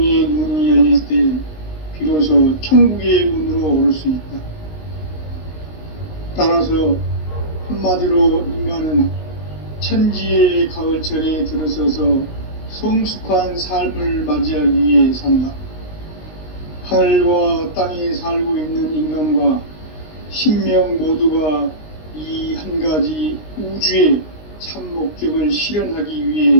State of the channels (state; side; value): late; right; 19 ms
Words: 눈이 열릴 때 비로소 천국의 문으로 오를 수 있다. 따라서 한마디로 인간은 천지의 가을철에 들어서서 성숙한 삶을 맞이하기 위해 산다. 하늘과 땅에 살고 있는 인간과 신명 모두가 이 한 가지 우주의 참 목적을 실현하기